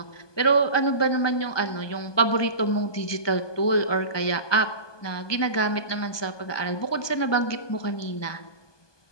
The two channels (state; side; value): late; right; 1.2 ms